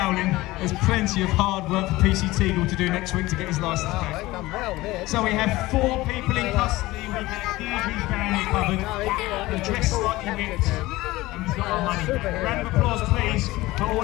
there's plenty of hard work for PC Teagle to do next week to get his licence back. So we have 4 people in custody, we have Deirdre's family covered, they're dressed slightly whipped, and we've got our money back. A round of applause please for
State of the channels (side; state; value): right; quieter; 19.0 dB